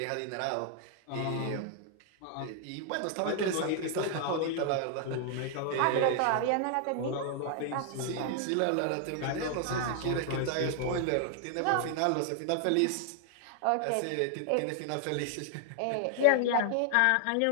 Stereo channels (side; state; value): both; different; correlation 0.00